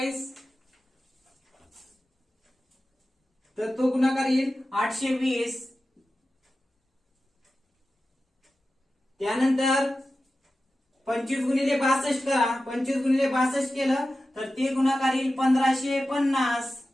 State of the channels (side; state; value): both; normal; correlation 0.94